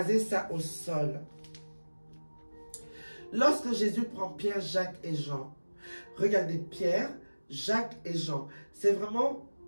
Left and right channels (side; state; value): both; inverted; correlation -1.00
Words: ça au sol. Lorsque Jésus prend Pierre, Jacques et Jean, regardez, Pierre, Jacques et Jean, c'est vraiment